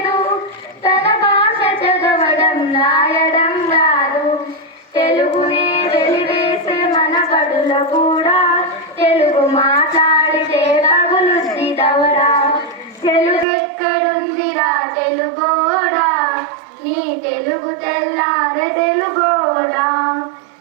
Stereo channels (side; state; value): left; drops out; at 13.5 s